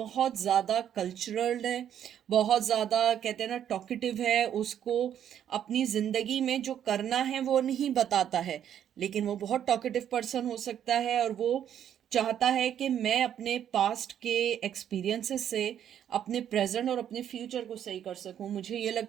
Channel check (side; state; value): left; quieter; 9.8 dB